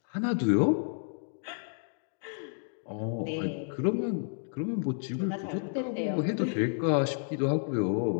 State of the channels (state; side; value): silent; right; digital silence